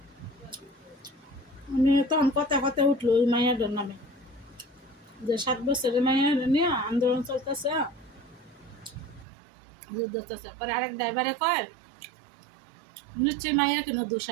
আমি তখন কথা কথা উঠলো ওই মাইয়াটার নামে, যে 7 বছরের মাইয়া নিয়ে আন্দোলন চলতেছে, যুদ্ধ চলতেছে। পরে আরেক ড্রাইভারে কয় নিশ্চয়ই মাইয়ার কোনো দোষ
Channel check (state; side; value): drops out; left; at 9.2 s